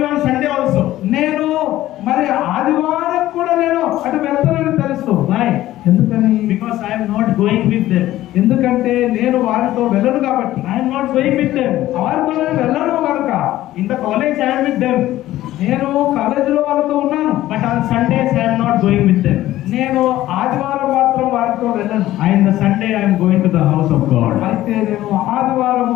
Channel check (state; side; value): quieter; right; 14.8 dB